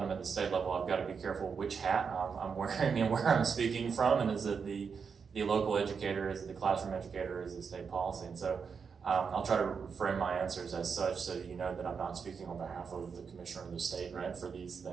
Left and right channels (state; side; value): quieter; left; 6.0 dB